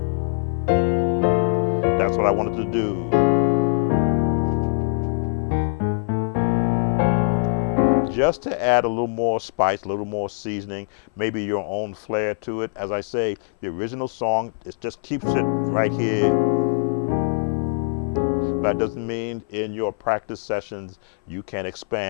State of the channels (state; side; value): silent; right; 59 dB below the other